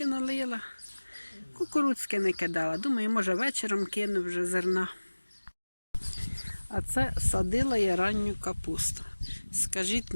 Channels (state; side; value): inverted; both; correlation -1.00